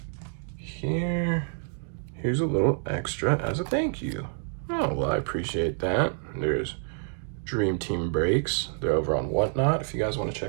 Here's a little extra as a thank you. Oh, well, I appreciate that. There's Dream Team Breaks. They're over on Whatnot if you guys want to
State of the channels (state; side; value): silent; left; 59 dB below the other